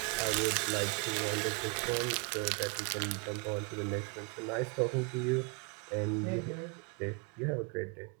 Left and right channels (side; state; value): left; quieter; 30.9 dB